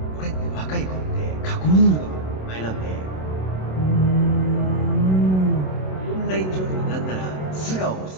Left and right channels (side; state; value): right; late; 27 ms